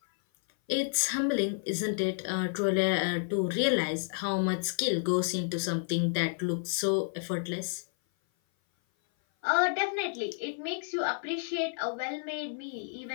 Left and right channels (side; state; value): right; silent; 56 dB below the other